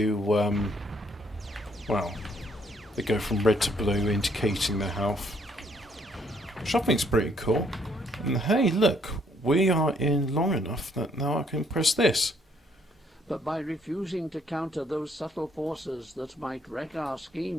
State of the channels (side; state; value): both; normal; correlation 0.67